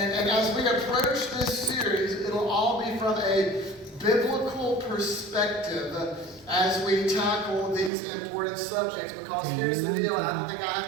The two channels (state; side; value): drops out; left; at 7.9 s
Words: as we approach this series, it'll all be from a biblical perspective as we tackle these important subjects. Because here's the deal, and I don't think I